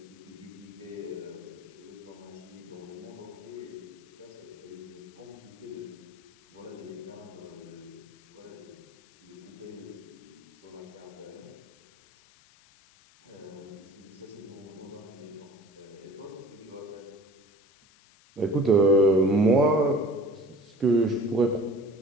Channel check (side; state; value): left; noise; hiss, 27 dB below the sound